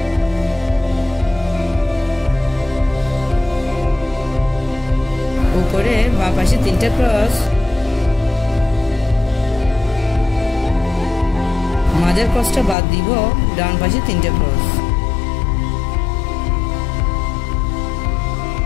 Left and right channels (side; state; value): right; drops out; at 12.8 s